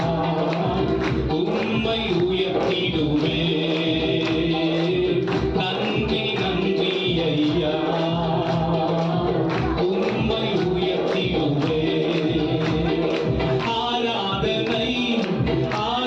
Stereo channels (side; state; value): both; identical; correlation 1.00